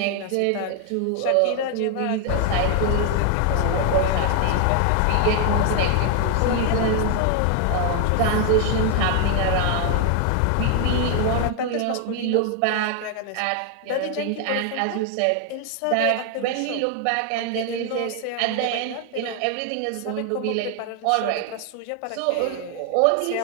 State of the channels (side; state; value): both; different; correlation 0.00